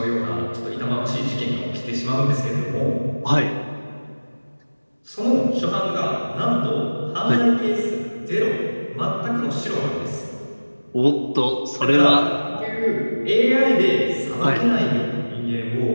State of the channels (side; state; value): both; inverted; correlation -1.00